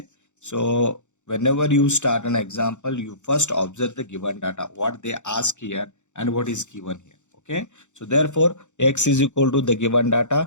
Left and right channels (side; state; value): right; late; 0.84 ms